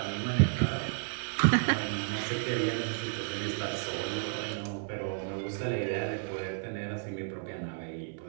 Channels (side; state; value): left; silent; 56 dB below the other